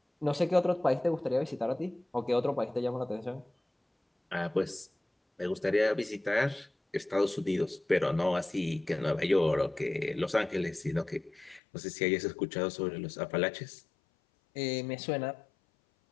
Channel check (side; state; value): right; drops out; at 11.6 s